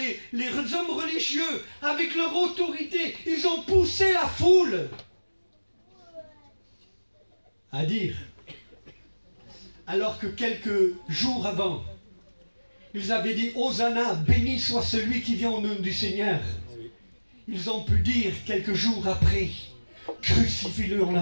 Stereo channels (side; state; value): both; inverted; correlation -1.00